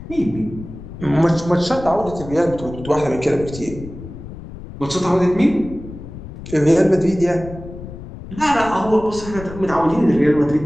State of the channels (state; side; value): noise; left; rumble, 13 dB below the sound